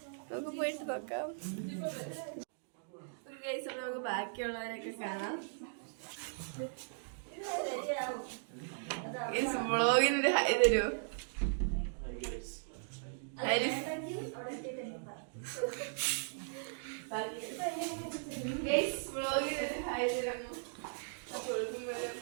നമുക്ക് പോയിട്ട് നോക്കാം. ഒരു കേസ് നമുക്ക് ബാക്കിയുള്ളവരൊക്കെ കാണാം. വ്ളോഗിനൊരു ഹൈ തരൂ. വ്ളോഗിനൊരു ഹൈ തരാമോ?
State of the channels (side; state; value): left; silent; digital silence